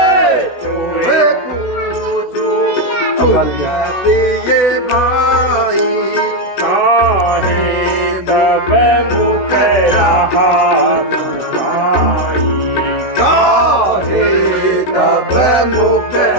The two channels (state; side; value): late; right; 16 ms